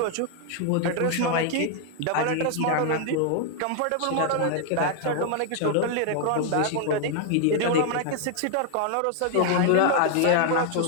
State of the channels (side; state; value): both; different; correlation 0.00